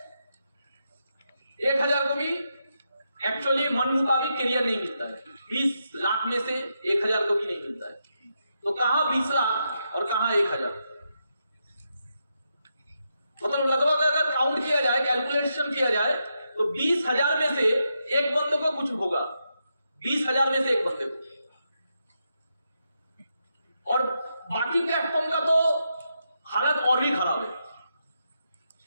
1000 को भी एक्चुअली मन मुताबिक करियर नहीं मिलता है। 20 लाख में से 1000 को भी नहीं मिलता है। तो कहां 20 लाख और कहां 1000? मतलब लगभग अगर काउंट किया जाए, कैलकुलेशन किया जाए तो 20,000 में से एक बंदे को कुछ होगा, 20,000 में से एक बंदे को। और बाकी प्लेटफॉर्म का तो हालत और भी खराब है।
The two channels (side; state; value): both; inverted; correlation -0.83